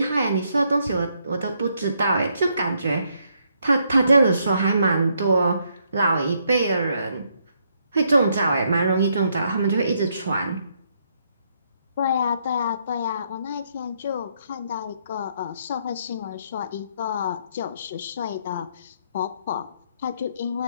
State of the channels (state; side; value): inverted; both; correlation -0.74